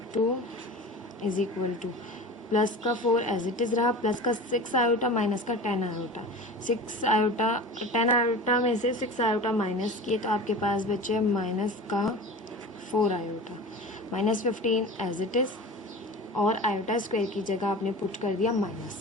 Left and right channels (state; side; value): normal; both; correlation 0.34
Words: is equal two plus का 4 एज इट इज़ रहा, प्लस का 6 आयोटा माइनस का 10 आयोटा। 6 आयोटा 10 आयोटा में से 6 आयोटा माइनस किए तो आपके पास बचे माइनस का 4 iota, minus 15 as it is, और आयोटा स्क्वायर की जगह आपने पुट कर दिया